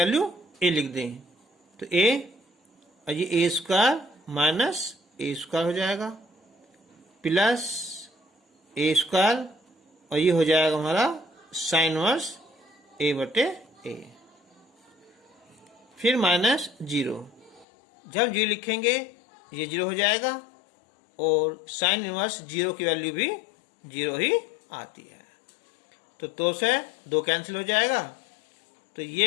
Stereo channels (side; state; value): right; drops out; at 17.7 s